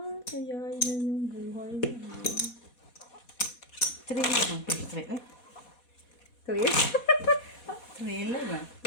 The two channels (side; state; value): right; late; 4.2 ms